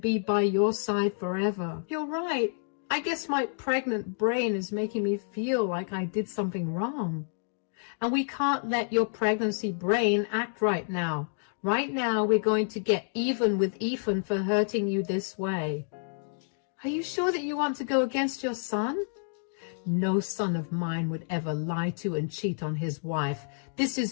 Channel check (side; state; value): right; silent; digital silence